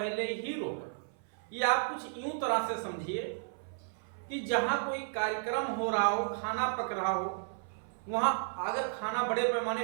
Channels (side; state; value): left; silent; 55 dB below the other